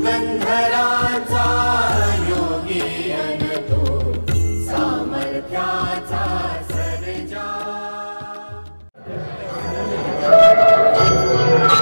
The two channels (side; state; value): both; inverted; correlation -1.00